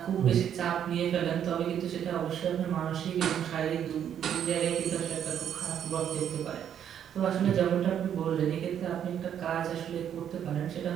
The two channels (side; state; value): left; quieter; 9.3 dB